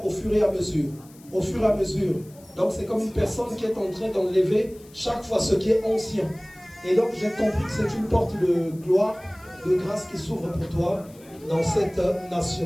au fur et à mesure. Au fur et à mesure. Donc c'est comme une personne qui est en train d'enlever chaque fois ce qui est ancien. Et donc j'ai compris que c'est une porte de gloire, de grâce qui s'ouvre pour toi dans cette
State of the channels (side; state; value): left; noise; hiss, 25 dB below the sound